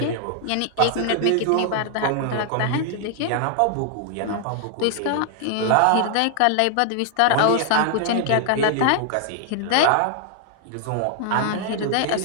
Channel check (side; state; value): both; different; correlation 0.00